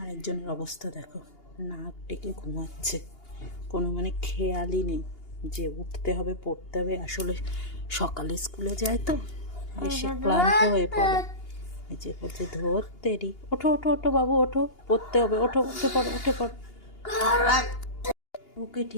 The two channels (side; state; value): right; late; 2.8 ms